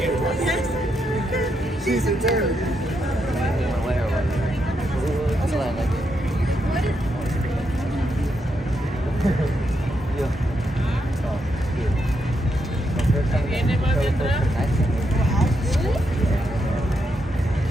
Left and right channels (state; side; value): normal; both; correlation 0.81